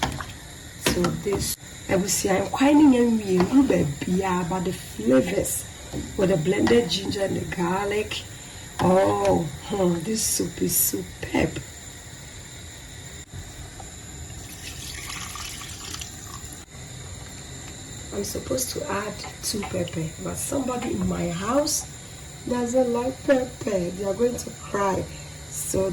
to this. I will see I'm quite but the flavors with the blended ginger and the garlic. This soup is superb. I'm supposed to add 2 pepper, but somebody in my house doesn't like pepper. They are going to cry. So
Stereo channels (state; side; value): identical; both; correlation 1.00